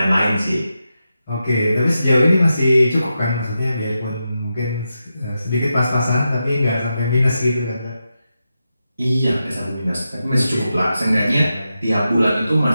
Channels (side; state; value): both; inverted; correlation -0.88